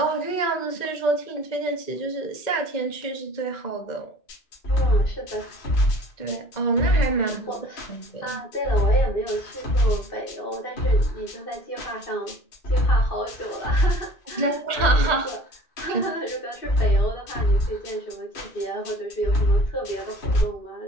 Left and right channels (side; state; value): right; late; 2.1 ms